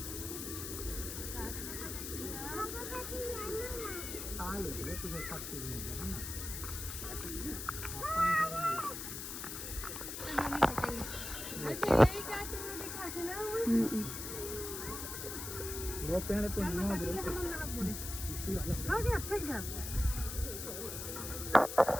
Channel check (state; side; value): noise; left; hiss, 6 dB below the sound